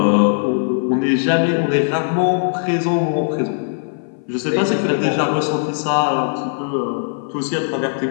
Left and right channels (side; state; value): right; silent; 58 dB below the other